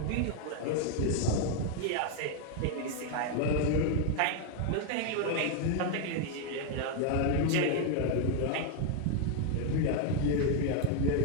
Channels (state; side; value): different; both; correlation 0.00